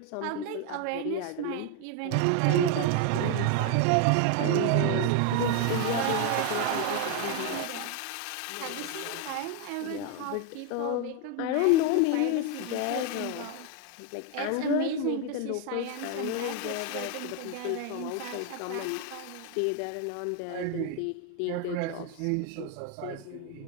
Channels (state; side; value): different; both; correlation 0.01